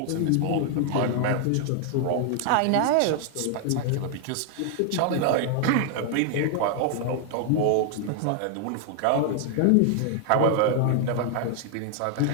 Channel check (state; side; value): different; both; correlation 0.00